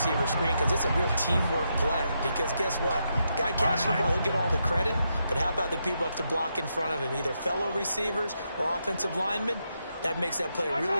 screen because it's a real teamwork play. Because guess what? The guy catching the ball, he'll get all the credit. But how about the people up to block in front of him, either fellow receivers or offensive linemen? That makes that play a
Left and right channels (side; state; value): both; inverted; correlation -0.82